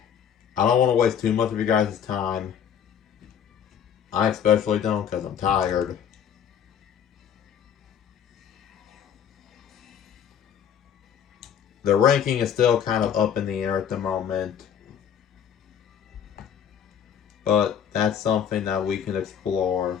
I don't want to waste too much of you guys' time. I especially don't, because I'm tired. The ranking is still kind of up in the air at the moment. But that's something that we can explore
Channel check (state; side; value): quieter; right; 8.5 dB